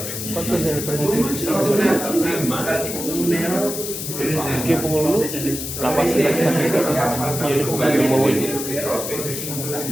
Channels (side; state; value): left; noise; hiss, 6 dB below the sound